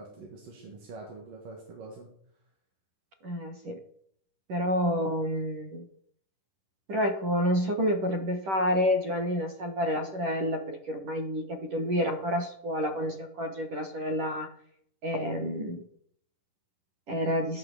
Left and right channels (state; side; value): late; left; 10 ms